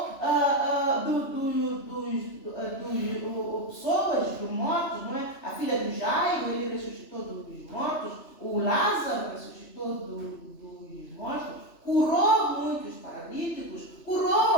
pessoas, dos mortos, não é? A filha do Jairo, ele ressuscitou dos mortos, o Lázaro ressuscitou dos mortos, curou muitos paralíticos,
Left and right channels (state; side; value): late; right; 3.0 ms